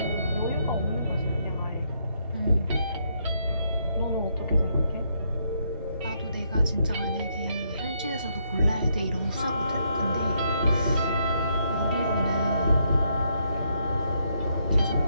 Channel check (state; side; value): inverted; both; correlation -0.75